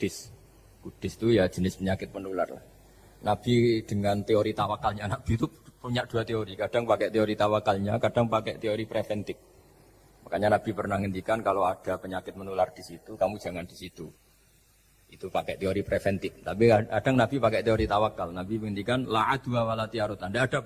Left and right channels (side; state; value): both; identical; correlation 1.00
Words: Kudis itu ya jenis penyakit menular lah. Nabi dengan teori tawakalnya, Nabi itu punya dua teori, kadang pakai teori tawakalnya, kadang pakai teori preventif. Makanya Nabi pernah ngendikan kalau ada penyakit menular di situ, kamu jangan di situ. Itu pakai teori preventif. Tapi kadang Nabi pakai teori tawakal. Nabi menghentikan la adwa wala tiarutan. Tidak ada